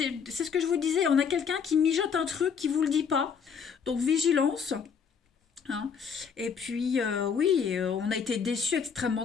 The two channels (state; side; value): quieter; right; 6.6 dB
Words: ce que je vous disais, on a quelqu'un qui mijote un truc qui ne vous le dit pas. Donc vigilance. hein. Et puis, oui, on a été déçus, extrêmement